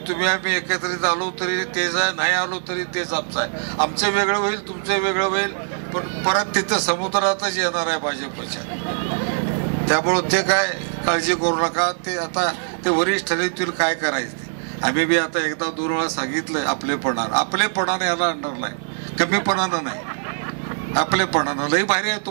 तुम्ही आम्ही एकत्रित आलो तरी तेच आहे, नाही आलो तरी तेच आमचं आहे. आमचं वेगळं होईल, तुमचं वेगळं होईल, पण परत तिथं समुद्रातच येणार आहे भाजपच्या. त्यामुळं ते काय काळजी करू नका. ते आता ते वरिष्ठ ठरवतील काय करायचं ते. आम्ही बी आता एकदा 2 वेळा सांगितलं आपलेपणानं याला आणणार नाही, कमीपणानं नाही, आपलेपणानं. लई भारी आहे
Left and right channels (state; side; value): silent; left; 64 dB below the other